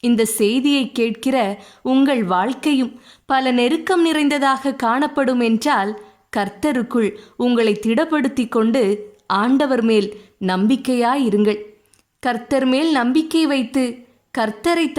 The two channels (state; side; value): identical; both; correlation 1.00